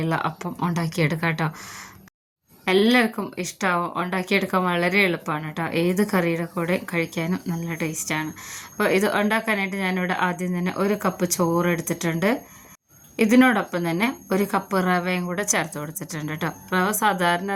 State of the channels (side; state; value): both; identical; correlation 1.00